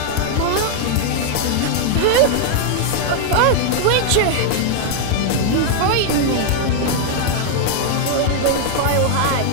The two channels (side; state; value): both; different; correlation 0.00